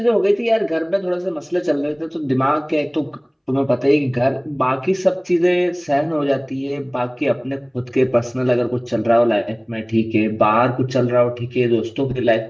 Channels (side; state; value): both; identical; correlation 1.00